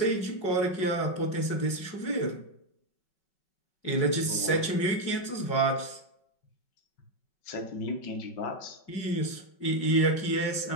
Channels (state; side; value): late; right; 5.3 ms